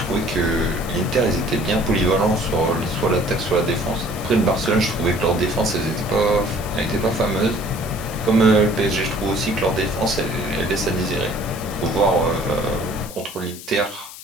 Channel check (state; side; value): noise; left; hiss, 14 dB below the sound